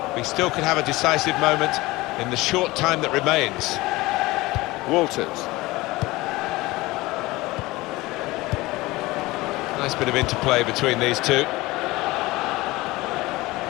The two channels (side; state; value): right; quieter; 20.4 dB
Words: We still could have a decisive moment in the short time that remains. Walters. Nice bit of interplay between these two.